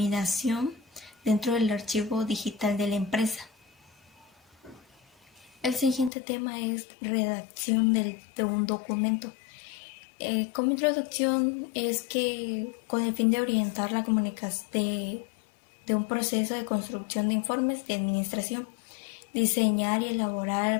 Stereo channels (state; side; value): drops out; right; at 6.1 s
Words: dentro del archivo digital de la empresa. El siguiente tema es redacción de un documento. Como introducción es que con el fin de orientar la comunicación de un proceso de construcción de informes de administración, diseñar y